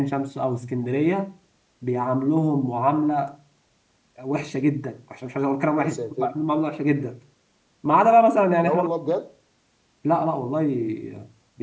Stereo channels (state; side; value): identical; both; correlation 1.00